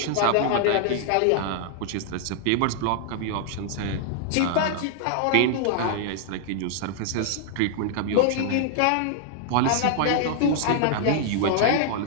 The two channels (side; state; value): both; different; correlation -0.01